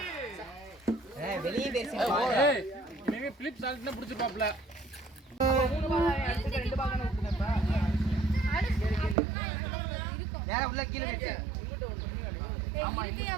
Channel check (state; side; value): drops out; left; at 9.2 s